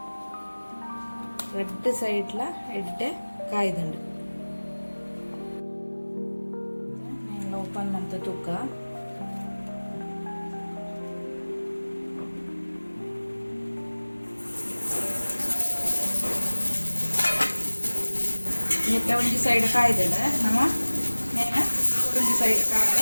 ರೆಡ್ ಸೈಡ್ಲ ಎಡ್ಡೆ ಕಾಯ್ದುಂಡು ಓಪನ್ ಮಾಡ್ತ ತೂಕ ಇದಕ್ಕೆ ಒಂದು ಸೈಡ್ ಕಾಯ್ದಲ್ಲ ನಮ್ಮ ನೇನ ಒಂದು ಸೈಡ್ ಕಾಯ್ದು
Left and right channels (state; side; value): inverted; both; correlation -1.00